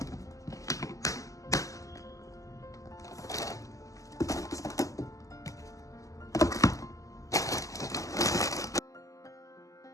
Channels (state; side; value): late; right; 0.16 ms